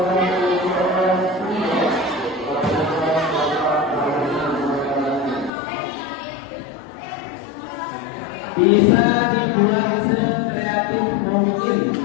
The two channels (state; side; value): drops out; right; at 5.5 s